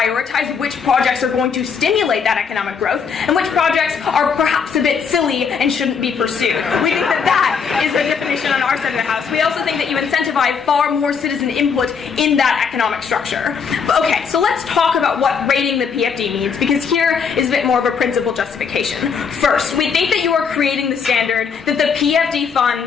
which projects are going to stimulate that economic growth and which projects are perhaps a bit silly and shouldn't be pursued. We think that that is the definition on our side of the house. We also think that you incentivize far more citizen input in that economic structure. But okay, so let's talk about what rating the PFD means, because here is a bit more of a principled justification. First, we think that you are creating the standard that the PFD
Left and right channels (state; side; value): quieter; right; 6.2 dB